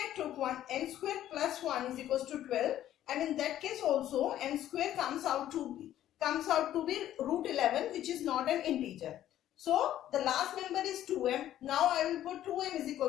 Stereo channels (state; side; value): quieter; right; 12.3 dB